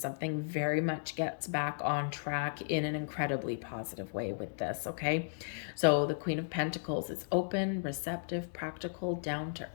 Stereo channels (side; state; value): right; silent; digital silence